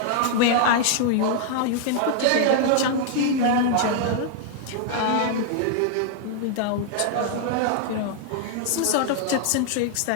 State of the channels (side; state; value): both; different; correlation 0.00